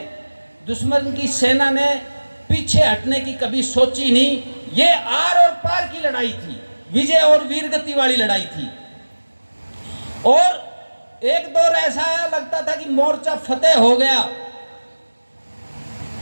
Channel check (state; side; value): inverted; both; correlation -1.00